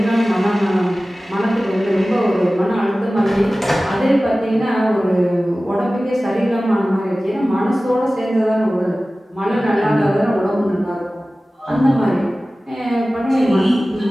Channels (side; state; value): both; normal; correlation 0.97